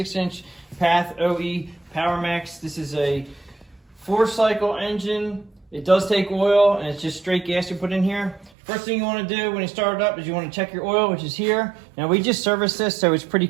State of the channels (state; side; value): drops out; left; at 8.5 s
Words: path OE Power Max. This is a 4-cycle engine. It does take oil, and it's just straight gas you put in here. First thing you want to do when you start it up is you want to check your oil, which is here. Now we just serviced this, so it's pretty